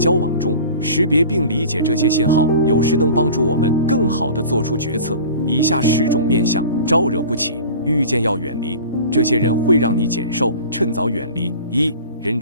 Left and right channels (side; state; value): both; inverted; correlation -0.40